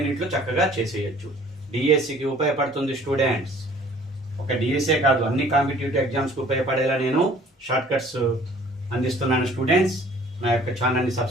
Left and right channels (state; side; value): normal; both; correlation 0.53